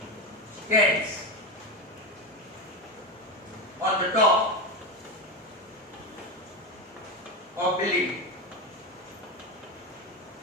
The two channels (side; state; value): both; normal; correlation 0.17